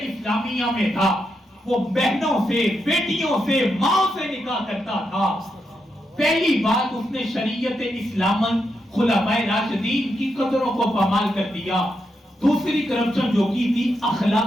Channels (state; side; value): normal; both; correlation 0.83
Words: اسلامیہ میں تھا، وہ بہنوں سے، بیٹیوں سے، ماں سے نکاح کرتا تھا۔ پہلی بات اس نے شریعت اسلام خلفائے راشدین کی قدروں کو پامال کر دیا۔ دوسری کرپشن جو کی تھی